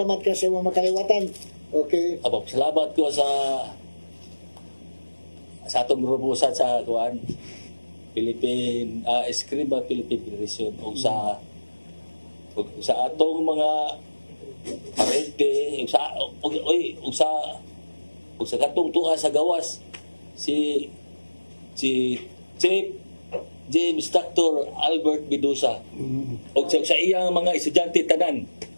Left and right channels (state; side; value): inverted; both; correlation -1.00